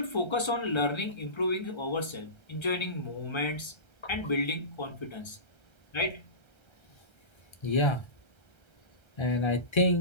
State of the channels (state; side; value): late; right; 1.3 ms